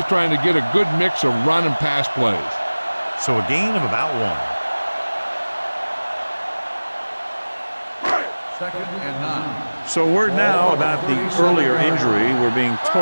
trying to get a good mix of run and pass plays. So a gain of about 1. 2nd and 9. So word now about the earlier injury. We're being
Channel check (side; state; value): both; inverted; correlation -1.00